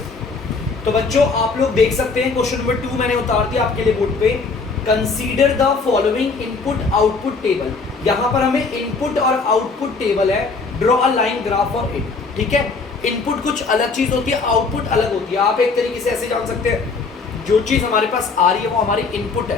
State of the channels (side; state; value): right; quieter; 4.4 dB